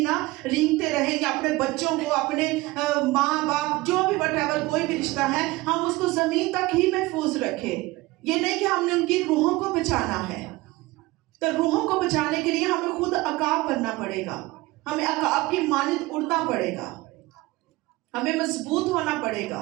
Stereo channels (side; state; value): left; quieter; 20.5 dB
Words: نا رینگتے رہیں گے، اپنے بچوں کو، اپنے ماں باپ جو بھی whatever کوئی بھی رشتہ ہے ہم اس کو زمین تک ہی محفوظ رکھیں۔ یہ نہیں کہ ہم نے ان کی روحوں کو بچانا ہے، تو روحوں کو بچانے کے لیے ہمیں خود عقاب بننا پڑے گا، ہمیں عقاب کی مانند اڑنا پڑے گا، ہمیں مضبوط ہونا پڑے